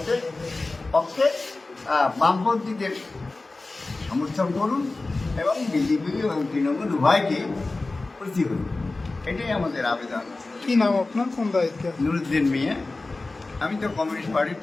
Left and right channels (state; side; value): quieter; right; 3.3 dB